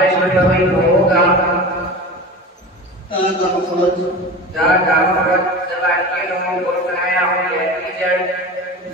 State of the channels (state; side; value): normal; both; correlation 0.31